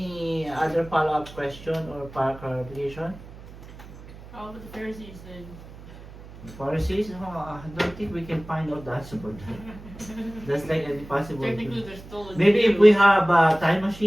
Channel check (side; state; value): right; noise; hum, 17 dB below the sound